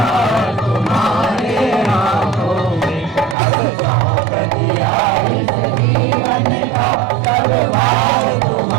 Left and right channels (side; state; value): left; drops out; at 3.4 s